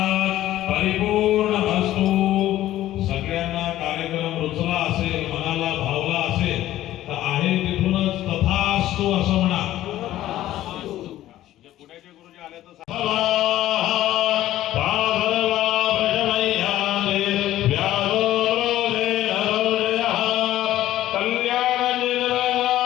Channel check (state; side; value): quieter; right; 14.0 dB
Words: परिपूर्णमस्तु. सगळ्यांना कार्यक्रम रुचला असेल मनाला भावला असेल तर आहे तिथूनच तथास्तु असं म्हणा. पुण्याचे गुरुजी आले तर